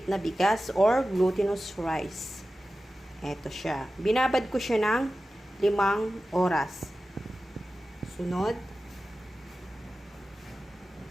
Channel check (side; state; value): both; normal; correlation 0.94